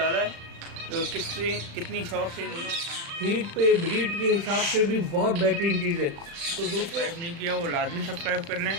है तो कितनी शौक से इन्होंने हीट पे ब्रीड के हिसाब से भी बहुत बेहतरीन चीज़ है। तो दोस्तों सब्सक्राइब नहीं किया वो लाजमी सब्सक्राइब कर लें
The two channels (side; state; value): left; late; 36 ms